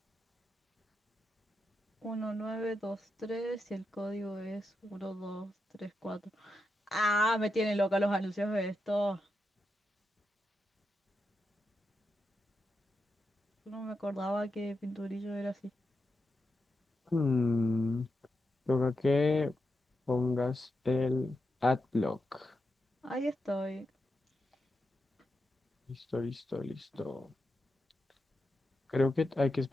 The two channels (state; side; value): normal; both; correlation 0.87